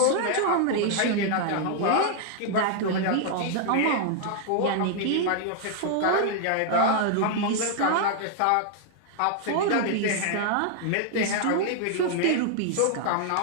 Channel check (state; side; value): different; both; correlation 0.00